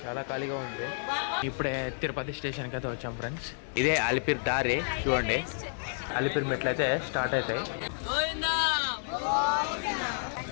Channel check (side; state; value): right; silent; 58 dB below the other